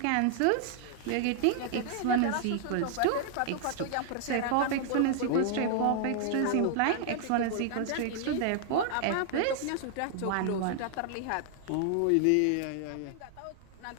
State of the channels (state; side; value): different; both; correlation -0.01